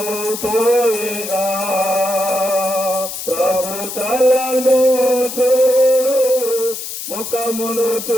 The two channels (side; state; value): left; noise; hiss, 8 dB below the sound